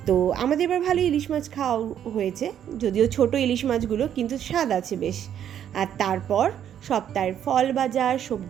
তো আমাদের এবার ভালো ইলিশ মাছ খাওয়া হয়েছে, যদিও ছোট ইলিশ মাছগুলো, কিন্তু স্বাদ আছে বেশ। আর তারপর সপ্তাহের ফল বাজার,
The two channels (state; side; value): quieter; left; 9.8 dB